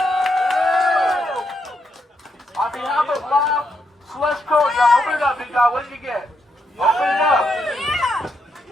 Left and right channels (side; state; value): both; normal; correlation 0.80